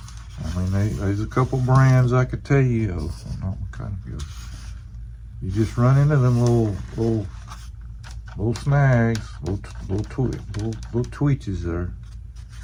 I mean, there's a couple brands I could tell you of. Not kind of good. You just run into them little snags, little twitches there.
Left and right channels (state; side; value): identical; both; correlation 1.00